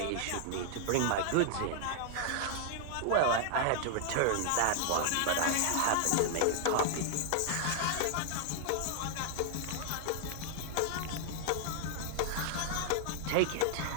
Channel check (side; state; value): both; different; correlation 0.00